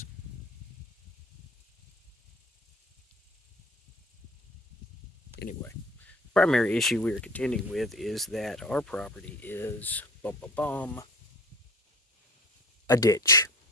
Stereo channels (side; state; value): both; normal; correlation 0.42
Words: Anyway, the primary issue we are contending with is that our property is a ditch.